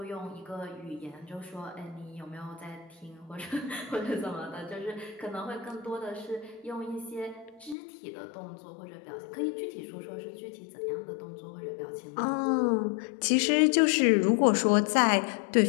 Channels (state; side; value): drops out; right; at 7.8 s